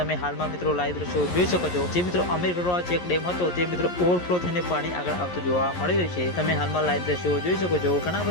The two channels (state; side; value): late; right; 11 ms